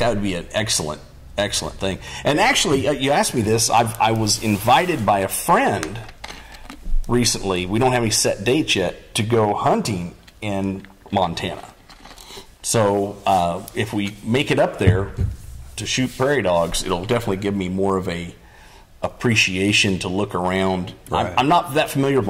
would be an excellent thing. And actually, you asked me this. I was invited by a friend recently. We don't have any set dates yet to go hunting in Montana. So if we make it up there to shoot prairie dogs, it'll definitely give me more of a appreciation to look around. Right. I'm not that familiar with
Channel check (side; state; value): both; identical; correlation 1.00